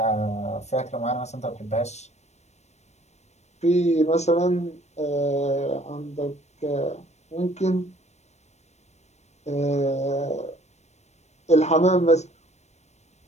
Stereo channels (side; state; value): right; late; 0.32 ms